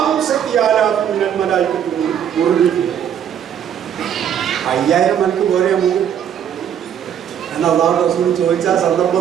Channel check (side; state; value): left; quieter; 9.2 dB